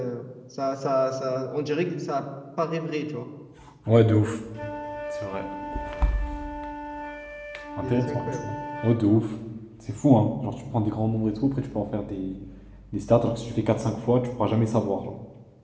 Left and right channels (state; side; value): identical; both; correlation 1.00